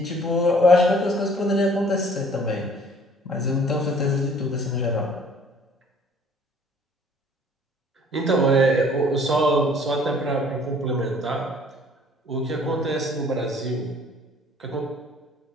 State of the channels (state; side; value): normal; both; correlation 0.55